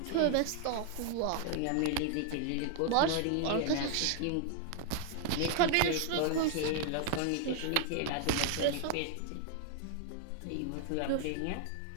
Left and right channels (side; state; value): both; different; correlation 0.00